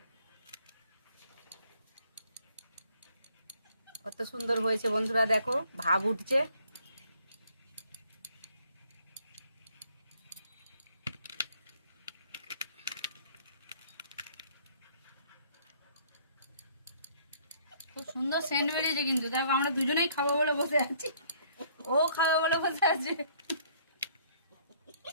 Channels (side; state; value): both; inverted; correlation -0.62